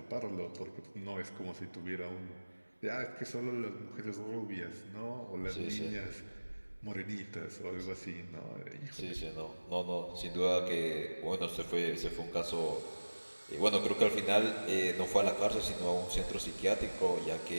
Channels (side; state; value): both; inverted; correlation -1.00